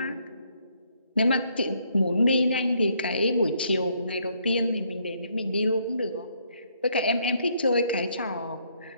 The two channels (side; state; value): both; inverted; correlation -0.70